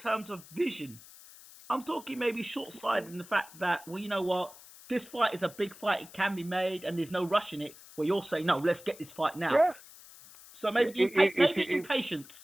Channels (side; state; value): left; noise; hiss, 20 dB below the sound